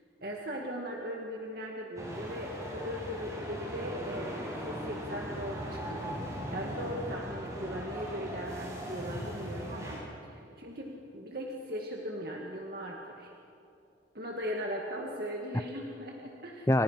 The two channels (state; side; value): normal; both; correlation 0.47